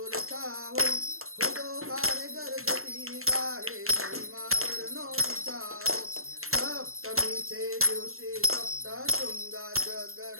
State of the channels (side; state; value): left; late; 0.62 ms